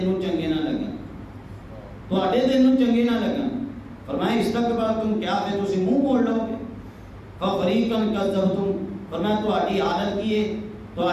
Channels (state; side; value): identical; both; correlation 1.00